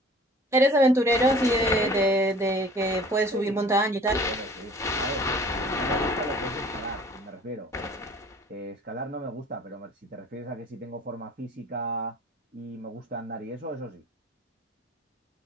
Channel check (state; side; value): normal; both; correlation 0.49